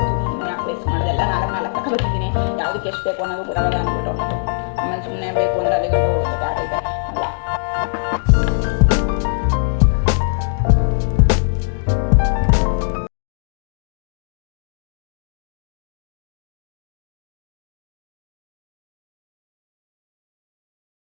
ಸುಮ್ಮನೆ ಪ್ಲೇಸ್ ಮಾಡೋದೆಲ್ಲ ನಾಲ್ಕು ತಗೊಬರ್ತಿದ್ದೀನಿ. ಯಾವುದಕ್ಕೆ ಎಷ್ಟು ಬೇಕು ಅನ್ನೋದು ಗೊತ್ತಾಗಲ್ಲ ಅಂದ್ಬಿಟ್ಟು. ಆಮೇಲೆ ಸುಮ್ಮನೆ ಬೇಕು ಅಂದರೆ ಅಲ್ಲಿ ಗಂಟೆ ಹೋಗುತ್ತೆ ಆಟೈತೆ ಅಲ್ಲ.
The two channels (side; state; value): right; silent; digital silence